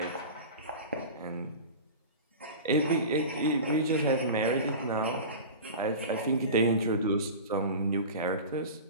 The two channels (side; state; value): both; inverted; correlation -0.32